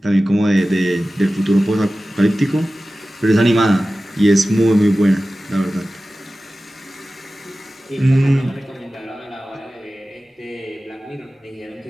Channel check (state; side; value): normal; both; correlation 0.96